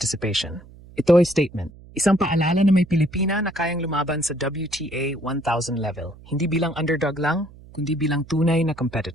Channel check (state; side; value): noise; right; hum, 21 dB below the sound